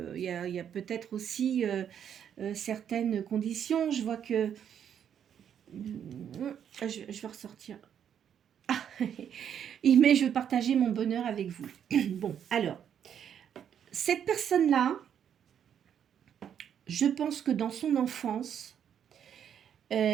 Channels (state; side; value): quieter; left; 8.8 dB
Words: il y a peut-être aussi certaines conditions. Je vois que... je vais ressortir. Ah, mais je veux partager mon bonheur avec vous. Bon, alors, cette personne-là, je pense que dans son enfance,